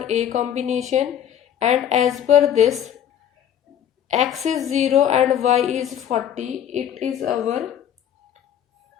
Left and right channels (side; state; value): right; quieter; 9.8 dB